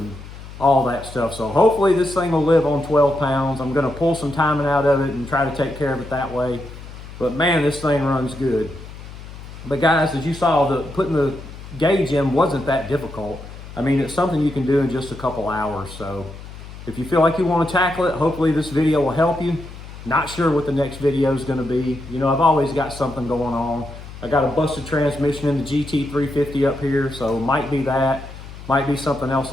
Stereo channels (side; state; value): left; noise; hum, 14 dB below the sound